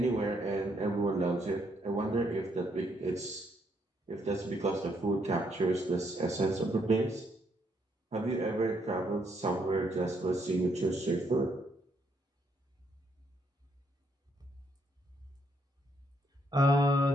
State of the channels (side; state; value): both; normal; correlation 0.73